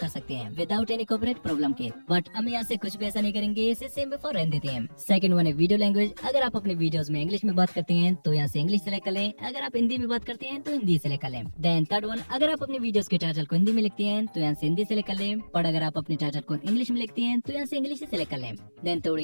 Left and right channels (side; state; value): both; inverted; correlation -1.00